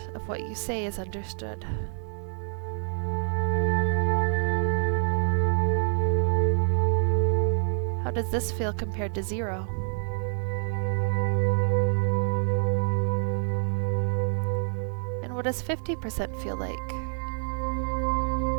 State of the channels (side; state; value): left; silent; 60 dB below the other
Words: of what you say is understood. How does this feel compared to 0? And what does 50% feel like?